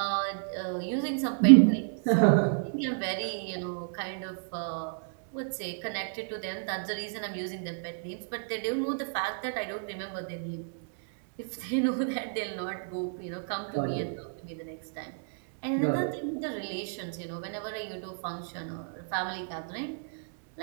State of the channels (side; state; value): left; silent; digital silence